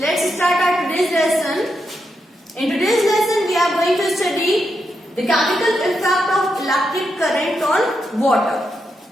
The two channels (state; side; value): normal; both; correlation 0.83